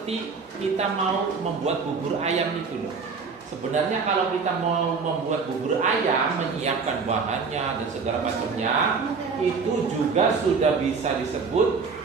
kita mau membuat bubur ayam itu loh. Sebenarnya kalau kita mau membuat bubur ayam, menyiapkan bahannya dan segala macamnya, itu juga sudah bisa disebut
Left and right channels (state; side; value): quieter; left; 5.0 dB